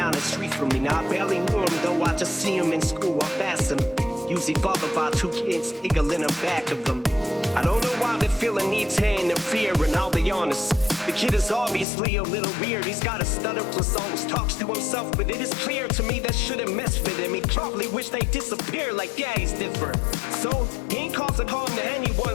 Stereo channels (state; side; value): drops out; right; at 11.9 s